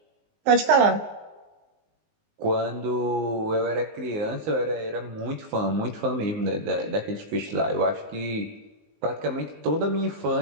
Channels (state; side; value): late; left; 19 ms